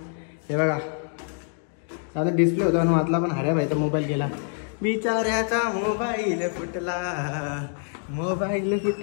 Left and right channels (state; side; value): silent; right; 56 dB below the other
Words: हे बघा आता डिस्प्ले होता आणि वाचला, पण हऱ्या भाईचा मोबाईल गेला, बिचाऱ्याचा मोबाईल फुटला